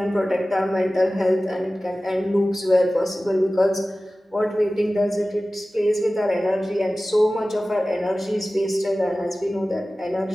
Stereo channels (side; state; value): both; normal; correlation 0.96